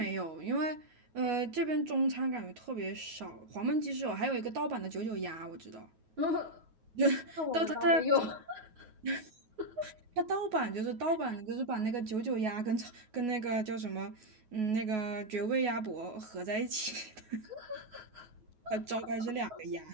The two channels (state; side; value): late; left; 9.4 ms